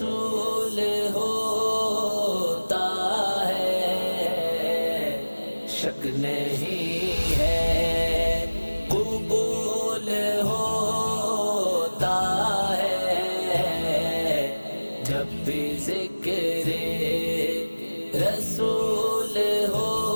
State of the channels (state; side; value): inverted; both; correlation -1.00